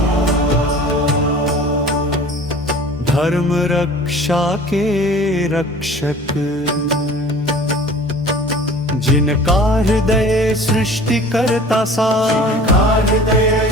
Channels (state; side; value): normal; both; correlation 0.44